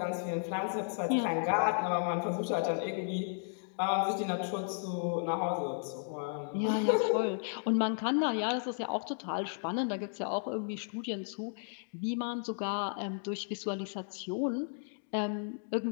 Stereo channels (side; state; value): right; silent; digital silence